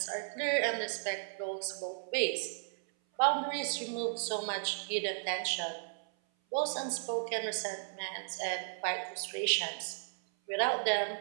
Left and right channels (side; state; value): left; silent; 55 dB below the other